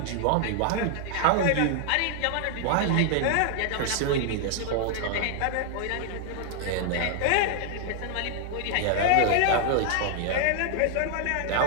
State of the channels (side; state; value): both; different; correlation 0.00